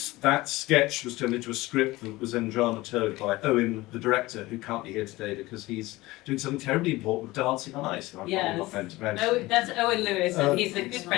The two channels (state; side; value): quieter; right; 19.5 dB